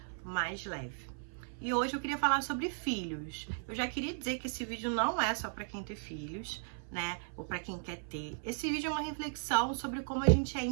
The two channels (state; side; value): silent; left; 54 dB below the other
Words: mais leve. E hoje eu queria falar sobre filhos. Eu já queria dizer que esse vídeo não é só para quem tem filhos, né? Ou para quem quer ter. Esse vídeo é uma reflexão sobre como a gente é